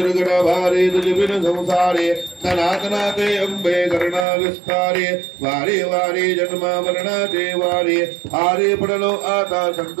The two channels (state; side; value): drops out; left; at 4.2 s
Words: भारे दुर्बिन संसारे सनातनाते अंबे करुणा विस्तारे वारे वारे जन्म मरणाचे वारे हारे पडलो आता